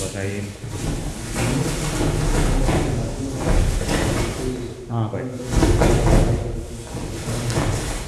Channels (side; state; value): both; identical; correlation 1.00